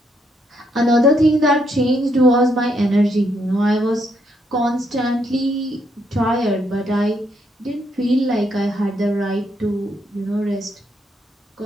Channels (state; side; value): normal; both; correlation 0.75